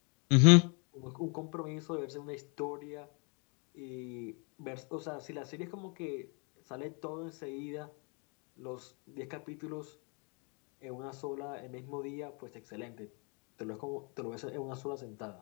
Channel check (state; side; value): quieter; right; 34.4 dB